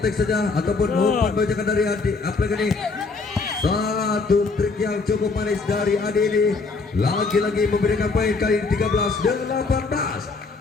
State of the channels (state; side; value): quieter; right; 4.1 dB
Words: saja ataupun umpan bajakan dari Adi apalagi ini satu trik yang cukup manis dari Adi ini lagi-lagi memberikan poin kali ini